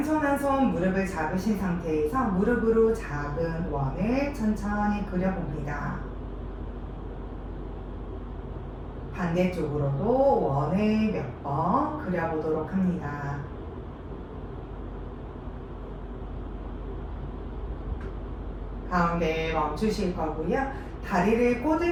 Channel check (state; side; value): identical; both; correlation 1.00